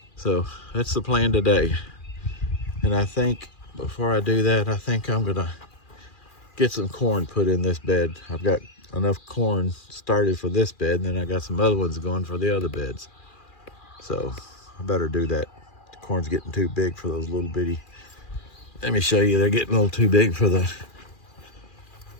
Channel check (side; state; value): right; late; 2.4 ms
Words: So that's the plan today. And I think before I do that, I think I'm gonna get some corn put in this bed. I've got enough corn started for this bed, and then I got some other ones going for the other beds. So I better do that. The corn's getting too big for those little bitty. Let me show you, they're getting a little too big for the